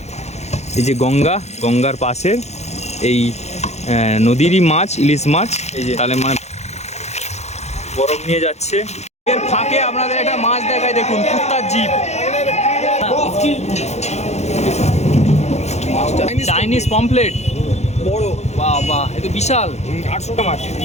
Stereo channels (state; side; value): late; right; 0.32 ms